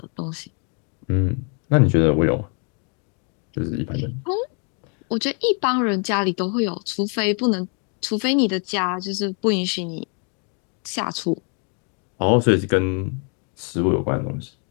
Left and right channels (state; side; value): quieter; right; 39.2 dB